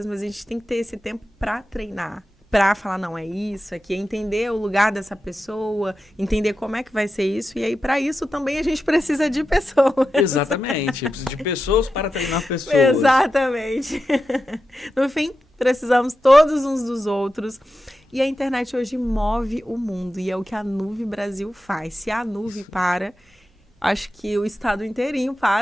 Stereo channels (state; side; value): normal; both; correlation 0.90